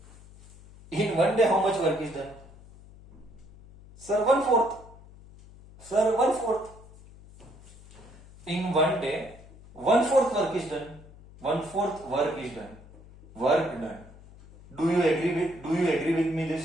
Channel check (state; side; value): noise; left; hum, 21 dB below the sound